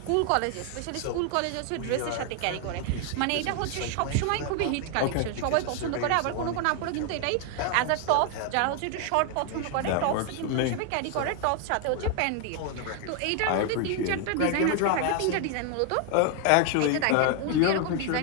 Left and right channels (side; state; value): both; different; correlation 0.00